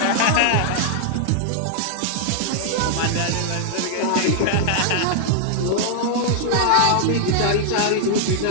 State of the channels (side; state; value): both; different; correlation -0.01